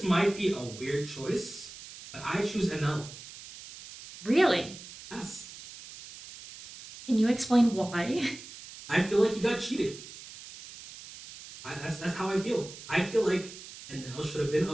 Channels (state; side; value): noise; right; hiss, 15 dB below the sound